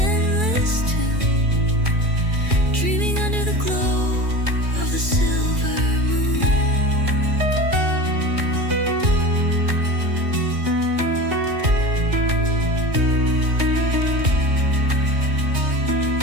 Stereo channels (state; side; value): late; left; 2.3 ms